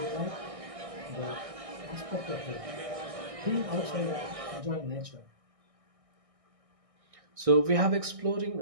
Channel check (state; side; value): late; left; 1.6 ms